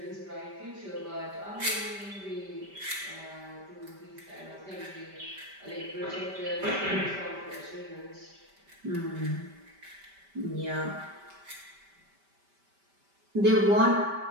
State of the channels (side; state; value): left; late; 5.1 ms